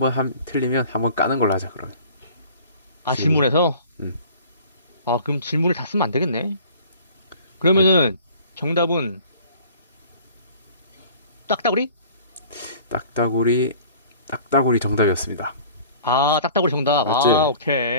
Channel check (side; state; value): both; inverted; correlation -0.47